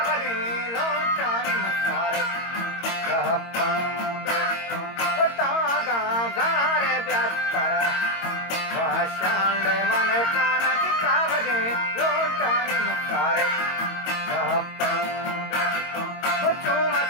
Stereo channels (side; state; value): right; late; 22 ms